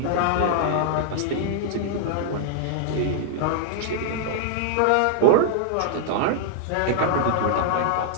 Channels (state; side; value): different; both; correlation -0.01